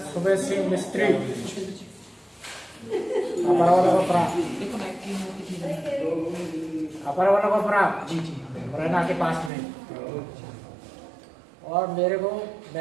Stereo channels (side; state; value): left; drops out; at 9.5 s